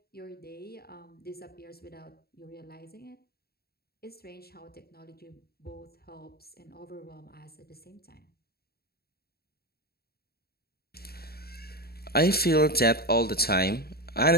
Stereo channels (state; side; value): late; right; 0.45 ms